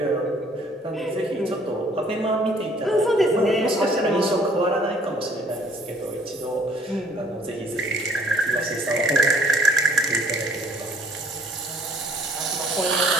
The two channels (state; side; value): normal; both; correlation 0.59